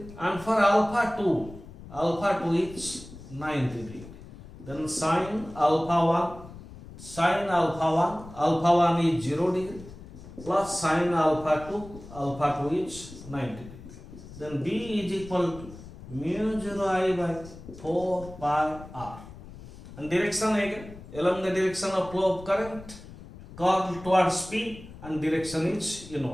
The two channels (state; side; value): noise; left; rumble, 16 dB below the sound